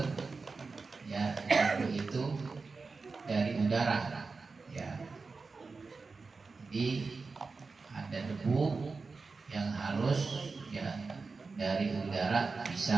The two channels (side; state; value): left; quieter; 4.3 dB